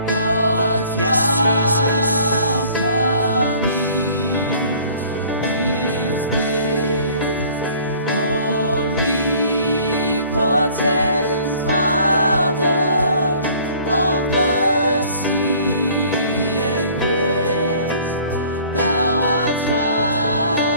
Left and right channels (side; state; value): both; inverted; correlation -0.53